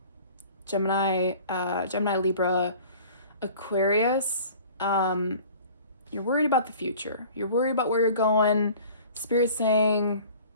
Gemini, Libra, Aquarius. You're worried about the future. You're worried about where you're going. Spirit's saying,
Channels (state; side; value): inverted; both; correlation -0.46